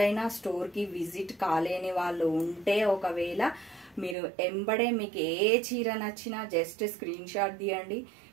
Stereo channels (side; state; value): left; drops out; at 4.2 s